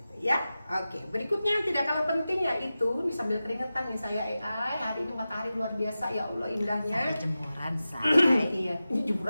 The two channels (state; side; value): inverted; both; correlation -0.94